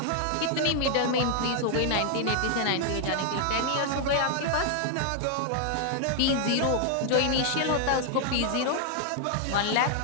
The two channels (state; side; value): different; both; correlation 0.00